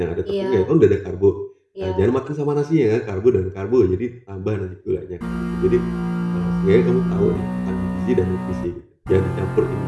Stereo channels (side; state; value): both; identical; correlation 1.00